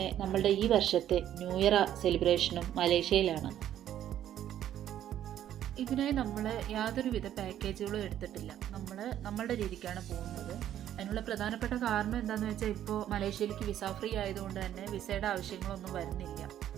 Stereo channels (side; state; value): left; quieter; 11.2 dB